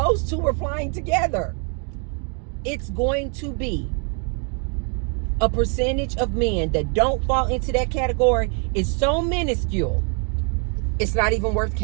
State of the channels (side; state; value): left; quieter; 38.5 dB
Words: two are flying together. It's going to be a percentage of men that don't fall into that category is so minuscule, it's not even worth